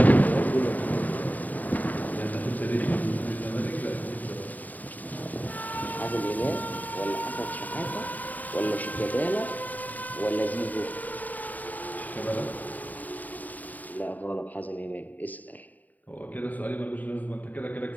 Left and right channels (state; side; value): late; right; 0.080 ms